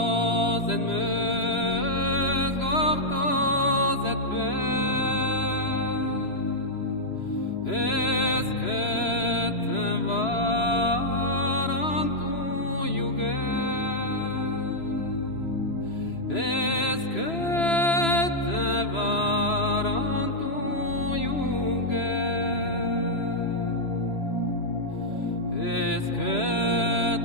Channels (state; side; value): late; right; 3.0 ms